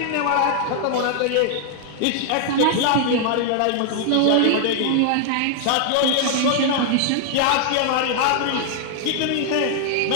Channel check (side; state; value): both; different; correlation 0.00